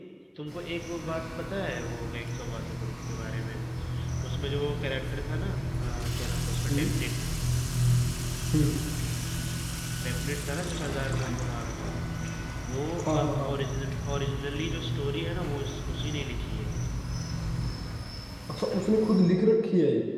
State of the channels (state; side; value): identical; both; correlation 1.00